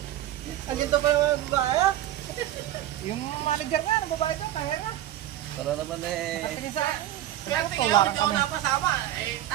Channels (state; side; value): quieter; left; 13.1 dB